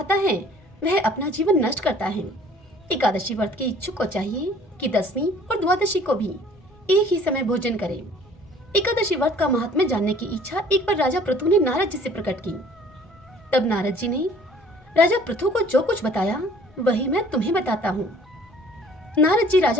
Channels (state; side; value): noise; left; rumble, 28 dB below the sound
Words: है वह अपना जीवन नष्ट करता है। एकादशी व्रत के इच्छुक को चाहिए कि दसवीं और द्वादशी को भी एक ही समय भोजन करें। एकादशी व्रत का महात्म्य जानने की इच्छा एक बार राजा पृथु ने नारद जी से प्रकट की। तब नारद जी ने राजा पृथु को जो कुछ बताया वही मैं तुम्हें बताता हूँ। नारद जी